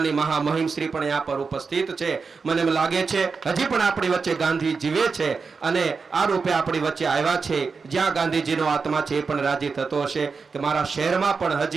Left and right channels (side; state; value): left; quieter; 4.9 dB